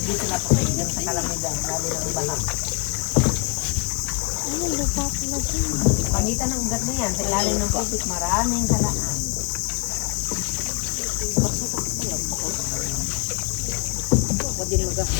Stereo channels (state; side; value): quieter; right; 29.7 dB